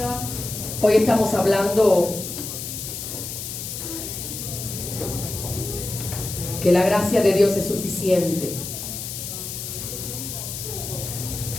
Hoy estamos hablando que la gracia de Dios es suficiente.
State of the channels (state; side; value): noise; left; hiss, 7 dB below the sound